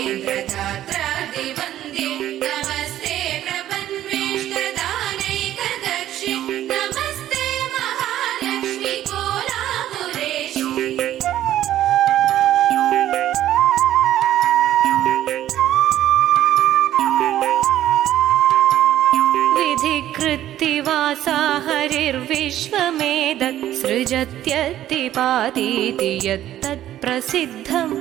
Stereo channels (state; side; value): quieter; left; 12.6 dB